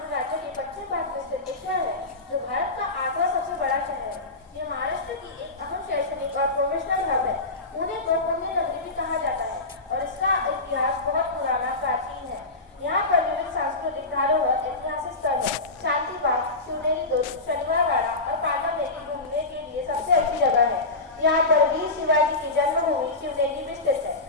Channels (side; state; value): right; quieter; 3.1 dB